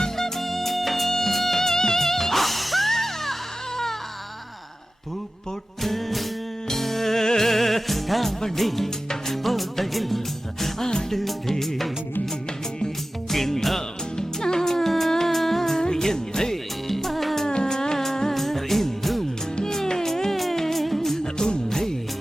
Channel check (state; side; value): normal; both; correlation 0.95